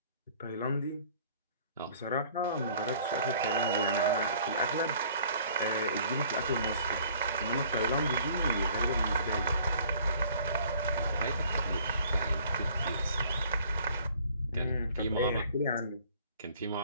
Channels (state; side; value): inverted; both; correlation -0.55